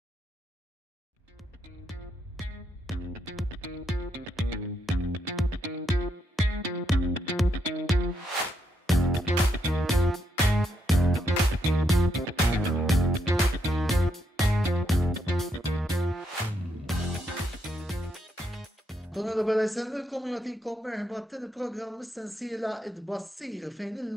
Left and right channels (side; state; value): both; normal; correlation 0.79